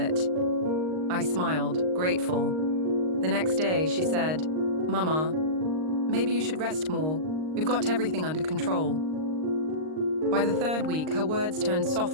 I smiled, grateful. The next day, she said, "Mama, maybe you should rest more. We've got everything under control." By the third week, her words turned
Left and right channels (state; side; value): late; left; 39 ms